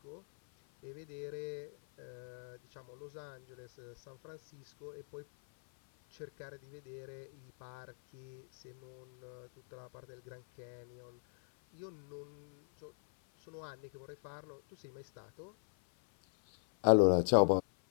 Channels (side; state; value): right; silent; 51 dB below the other